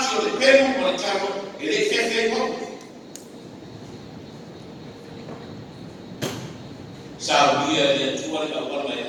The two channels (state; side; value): identical; both; correlation 1.00